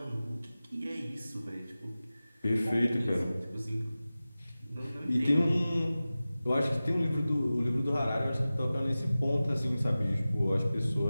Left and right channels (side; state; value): both; inverted; correlation -0.96